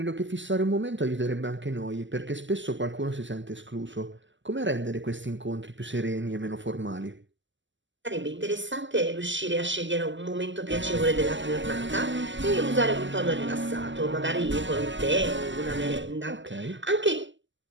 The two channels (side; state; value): left; late; 0.54 ms